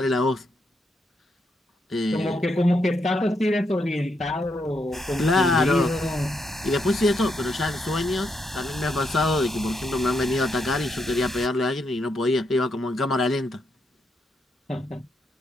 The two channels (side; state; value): both; normal; correlation 0.79